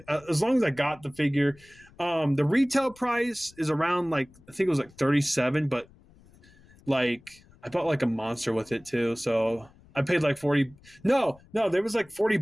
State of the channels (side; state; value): left; noise; rumble, 26 dB below the sound